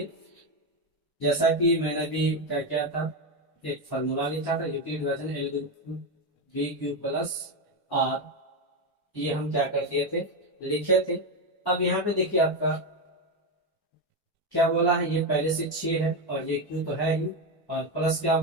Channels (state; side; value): normal; both; correlation 0.10